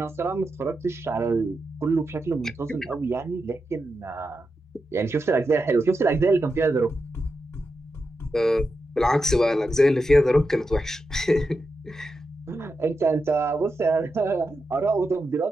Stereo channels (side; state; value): both; normal; correlation 0.88